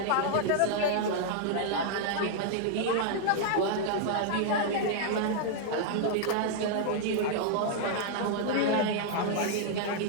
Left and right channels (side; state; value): both; different; correlation -0.01